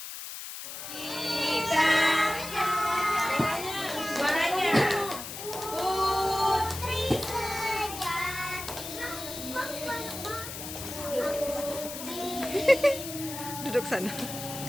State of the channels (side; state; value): left; noise; hiss, 9 dB below the sound